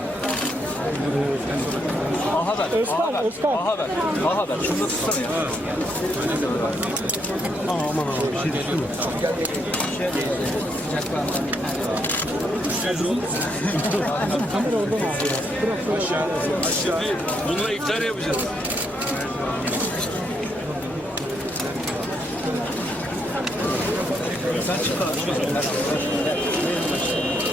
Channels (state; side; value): normal; both; correlation 0.76